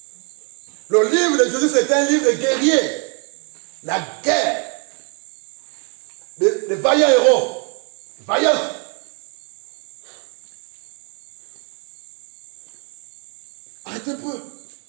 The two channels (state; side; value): quieter; left; 37.5 dB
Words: Le livre de Josué, c'est un livre de guerrier. La guerre. Des vaillants héros. Vaillants.